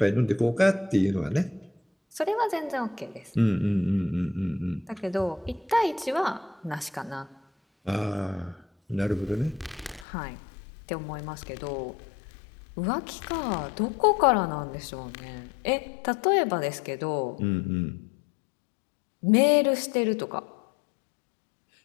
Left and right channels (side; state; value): right; drops out; at 10.1 s